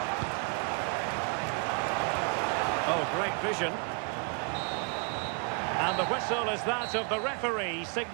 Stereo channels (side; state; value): left; quieter; 36.4 dB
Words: Oh, great vision. And the whistle is that of the referee,